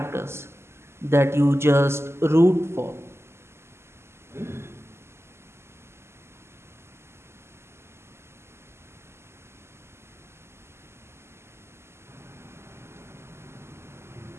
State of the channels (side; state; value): left; late; 0.12 ms